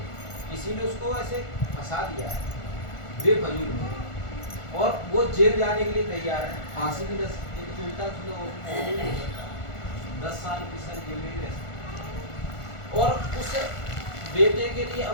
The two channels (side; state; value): right; late; 1.4 ms